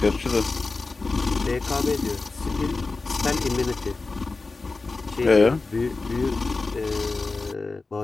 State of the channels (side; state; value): right; quieter; 3.7 dB